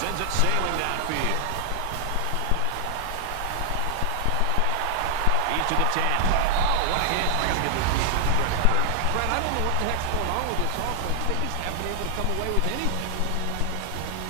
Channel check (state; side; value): different; both; correlation 0.00